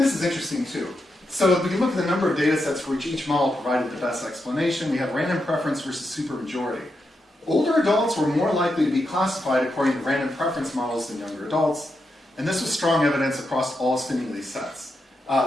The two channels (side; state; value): both; normal; correlation 0.85